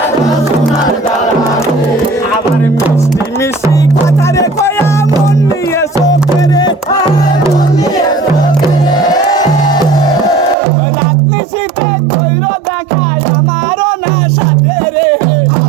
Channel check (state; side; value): drops out; left; at 10.6 s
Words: দাও সোনার দাওরা রে আবার মিষ্টি মিষ্টি কথা রে কয়া মন নিয়ে চোখে রে মন নিয়ে চোখে রাত্রি শীতে কইর দেখায় আমারও না সাথে রে